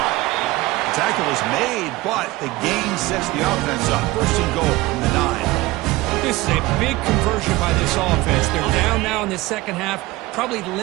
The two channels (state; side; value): quieter; left; 19.6 dB